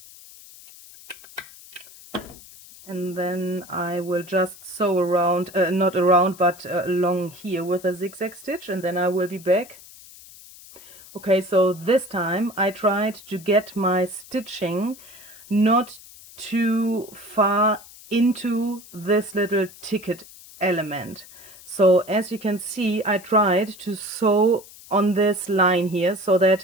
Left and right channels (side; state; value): left; noise; hiss, 20 dB below the sound